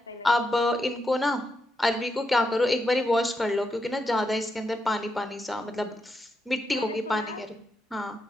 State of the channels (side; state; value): both; normal; correlation 0.83